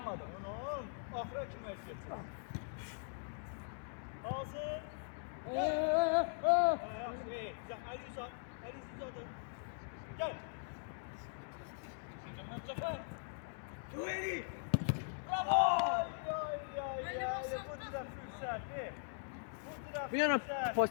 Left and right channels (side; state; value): right; silent; digital silence